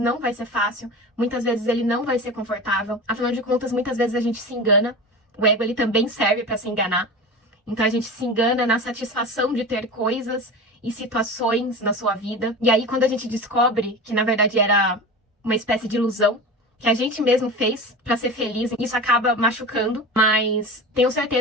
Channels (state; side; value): normal; both; correlation 0.30